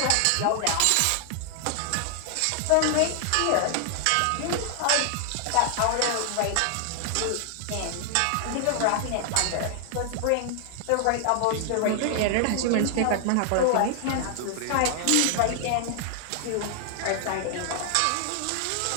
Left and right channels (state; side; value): different; both; correlation 0.00